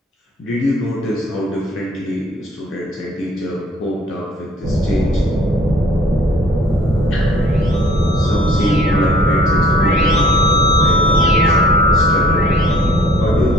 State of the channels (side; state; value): both; normal; correlation 0.56